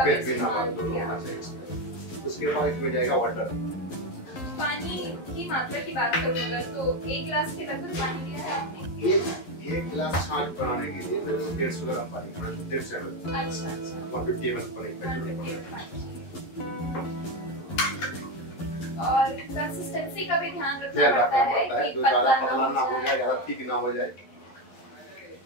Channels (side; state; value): right; late; 11 ms